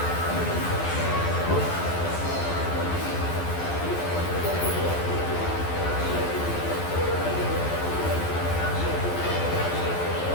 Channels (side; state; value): right; late; 12 ms